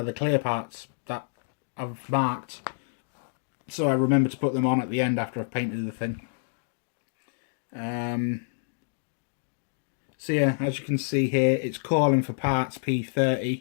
are the clear parts that I've marked. So I remember to put them on at the end after I've painted the thing. So yeah, as you can see here, it's calling for parts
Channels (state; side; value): silent; right; digital silence